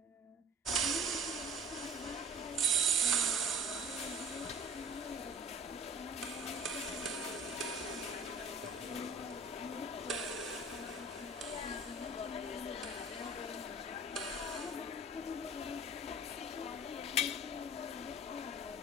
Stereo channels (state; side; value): normal; both; correlation 0.43